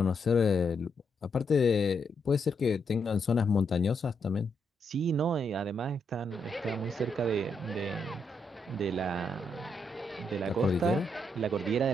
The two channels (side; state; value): both; normal; correlation 0.79